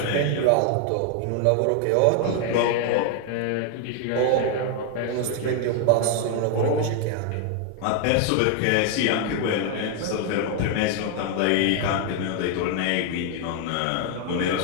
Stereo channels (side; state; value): both; different; correlation 0.00